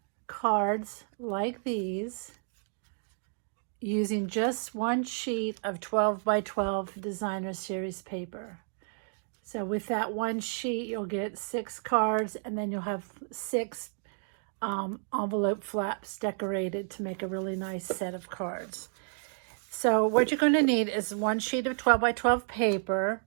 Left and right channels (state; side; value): silent; left; digital silence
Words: cards like these using just one sheet of 12 by 12 designer series paper. So with that one sheet, you'll get 6 cards, and then you'll have 6 envelope flaps decorated to make a really nice set of cards. So what you're going to need is one sheet of 12 by 12 paper,